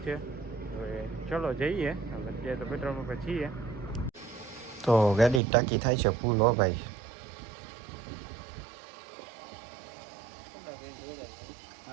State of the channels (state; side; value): drops out; left; at 5.4 s